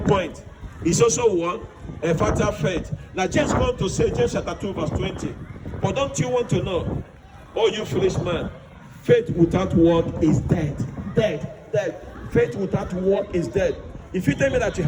point. It's also one, a fatal faith. Now James goes on to say, James chapter 2 verse 20, but don't you want to know, oh you foolish man, faith without work is dead. Dead. Faith without work is dead. If you tell me that you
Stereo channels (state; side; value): identical; both; correlation 1.00